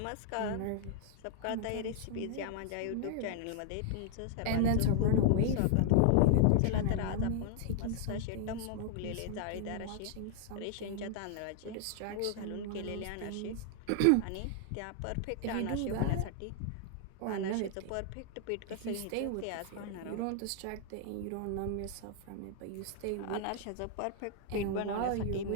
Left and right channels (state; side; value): different; both; correlation 0.00